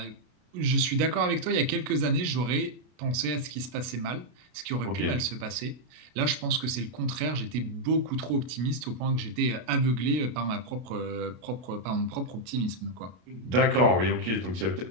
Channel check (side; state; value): left; late; 33 ms